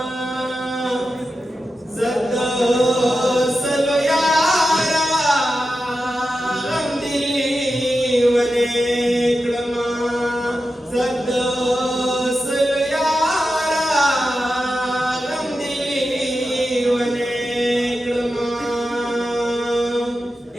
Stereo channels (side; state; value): both; normal; correlation 0.91